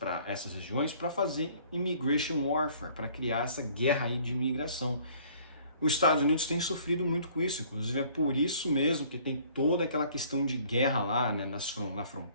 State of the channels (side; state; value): both; inverted; correlation -0.56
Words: essas regiões para fazer immigration warfare, para criar essa guerra aí de imigração. Os Estados Unidos têm sofrido muito com isso, inclusive é por isso mesmo que tem toda aquela questão de guerra lá, né, na